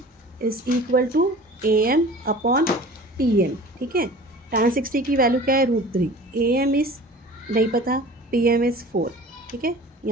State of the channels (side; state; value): both; normal; correlation 0.42